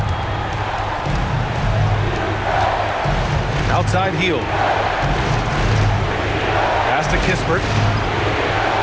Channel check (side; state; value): both; identical; correlation 1.00